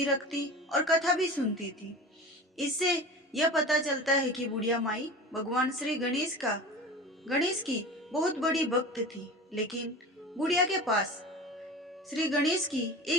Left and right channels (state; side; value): normal; both; correlation 0.34